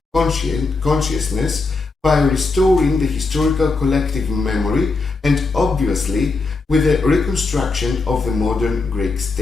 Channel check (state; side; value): quieter; right; 3.9 dB